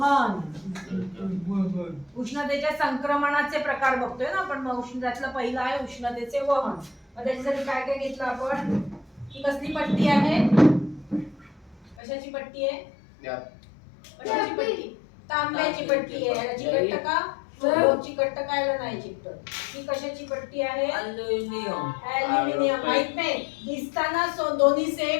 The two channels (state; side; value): drops out; right; at 12.0 s